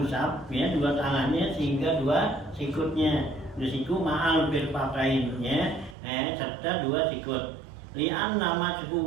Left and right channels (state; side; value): drops out; left; at 6.0 s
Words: ya dua tangannya sehingga dua sikutnya, dua siku ma'al mirfaqain ya, serta dua sikut. Li'an nama